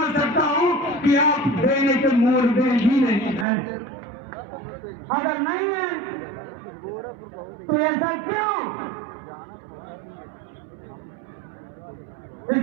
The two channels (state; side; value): drops out; left; at 3.5 s